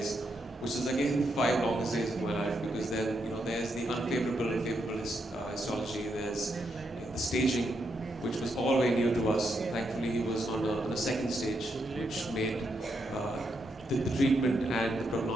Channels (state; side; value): normal; both; correlation 0.80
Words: which is again 5 longest days of my life, because then there's the unfavorable and favorable histology, there's the staging, which was all very new to us. Thankfully, he was on a second stage, which made the treatment and the